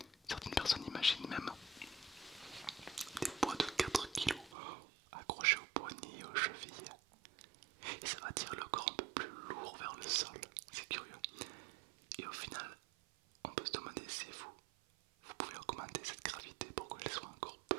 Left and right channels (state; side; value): drops out; left; at 4.5 s